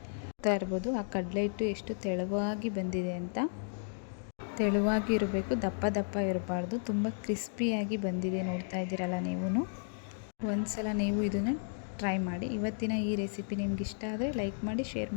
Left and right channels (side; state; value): right; silent; digital silence